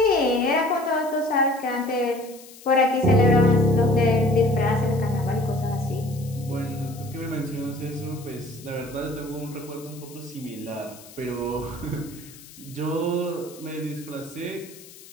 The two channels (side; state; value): left; noise; hiss, 20 dB below the sound